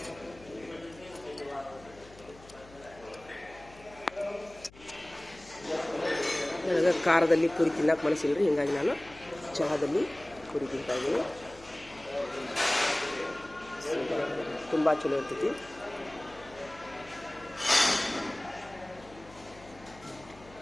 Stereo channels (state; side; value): noise; left; hum, 22 dB below the sound